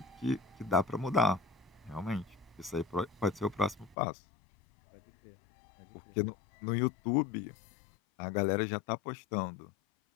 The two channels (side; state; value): right; drops out; at 4.0 s